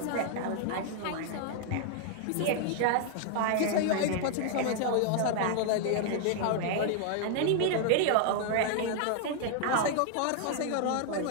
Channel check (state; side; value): different; both; correlation 0.00